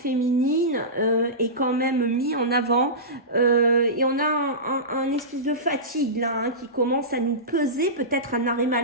est quand même mise en avant, et on a un espèce de fatigue là, hein, qui commence à nous peser, peut-être un arrêt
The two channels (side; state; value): both; normal; correlation -0.19